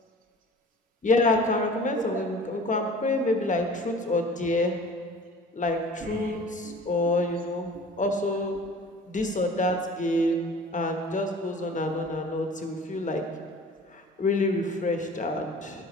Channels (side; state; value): both; normal; correlation 0.44